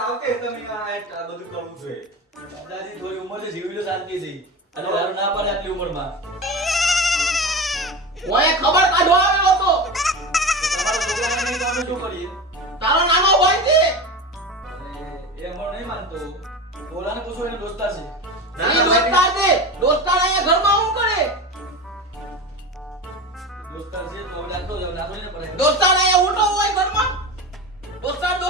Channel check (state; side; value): normal; both; correlation 0.27